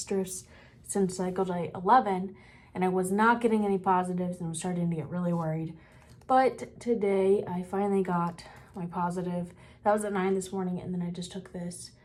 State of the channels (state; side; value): identical; both; correlation 1.00